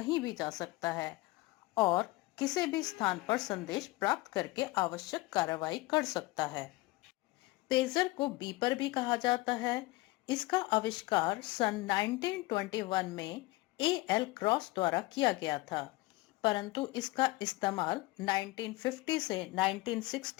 भी जा सकता है और किसी भी स्थान पर संदेश प्राप्त करके आवश्यक कार्रवाई कर सकता है। पेजर को बीपर भी कहा जाता है। इसका आविष्कार सन 1921 में एल क्रॉस द्वारा किया गया था, परंतु इसका इस्तेमाल 1950 से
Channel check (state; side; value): quieter; right; 20.9 dB